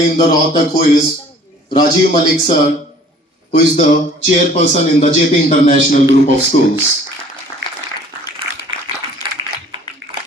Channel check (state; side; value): normal; both; correlation 0.52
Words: in the Rohtak, who is Rajiv Malik sir, who is the chairperson in the JP International Group of Schools.